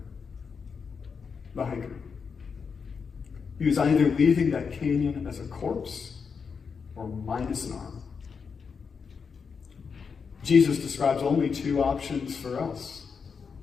the hiker. He was either leaving that canyon as a corpse or minus an arm. Jesus describes only two options for us.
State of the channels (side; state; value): right; quieter; 5.8 dB